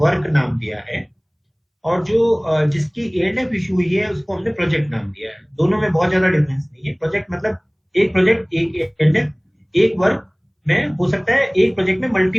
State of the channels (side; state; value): both; identical; correlation 1.00